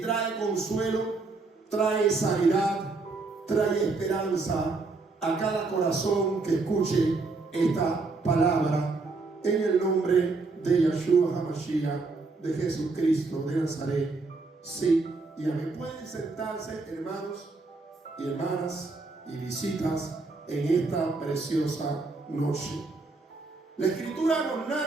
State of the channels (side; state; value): left; quieter; 3.7 dB